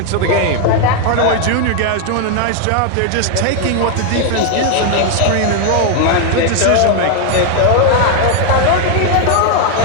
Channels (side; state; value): both; different; correlation 0.00